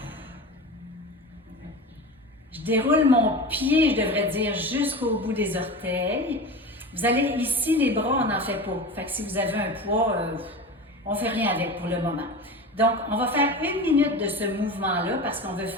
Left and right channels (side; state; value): both; normal; correlation 0.29